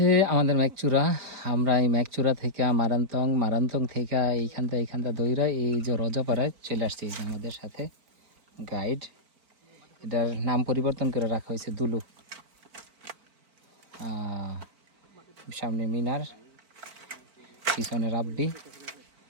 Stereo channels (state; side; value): late; left; 4.4 ms